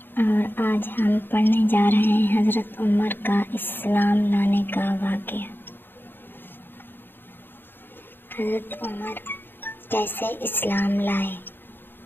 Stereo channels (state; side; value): late; right; 0.099 ms